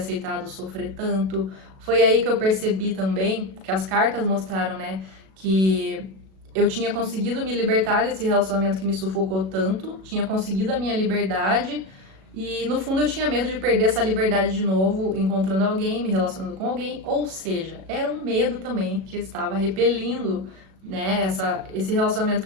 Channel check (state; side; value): late; left; 37 ms